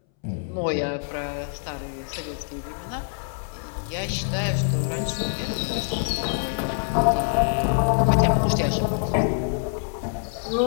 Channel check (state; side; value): silent; right; 62 dB below the other